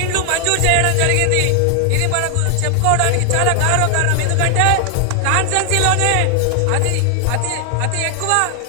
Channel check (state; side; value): different; both; correlation 0.00